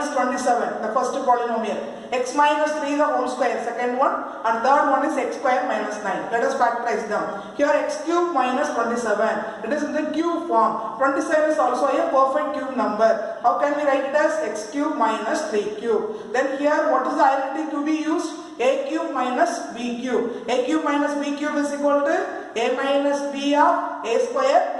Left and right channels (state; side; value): identical; both; correlation 1.00